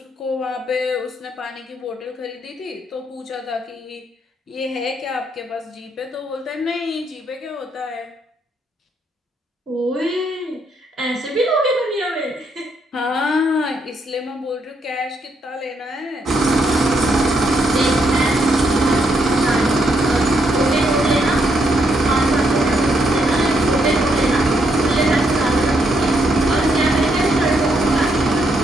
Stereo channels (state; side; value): normal; both; correlation 0.76